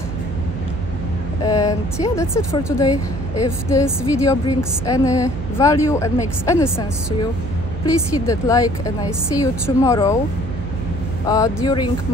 And yeah, that's it for today. If this video brings any value and makes any sense to you, please hit that like, and I see you tomorrow during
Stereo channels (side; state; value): right; noise; hum, 7 dB below the sound